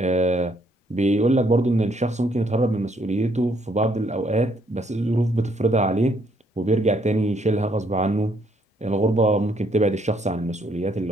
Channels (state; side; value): normal; both; correlation 0.69